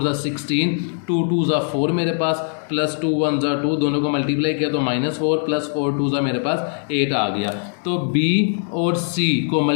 16 2 2 4 मेरे पास प्लस 2 1 2 दोनों को मल्टीप्लाई किया तो -4 प्लस 4 2 मेरे पास 8 आ गया। तो B और C को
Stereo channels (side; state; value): right; silent; digital silence